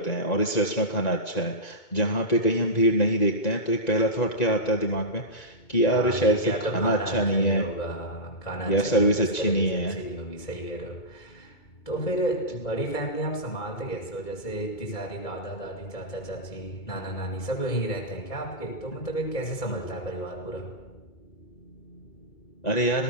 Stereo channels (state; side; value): late; right; 2.2 ms